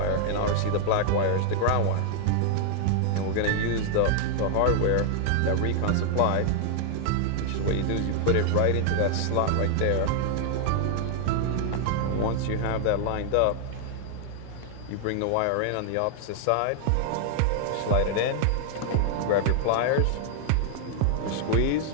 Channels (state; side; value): different; both; correlation 0.00